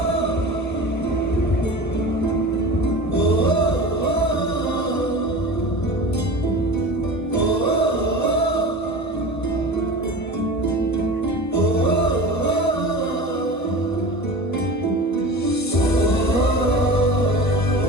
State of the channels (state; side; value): late; right; 1.5 ms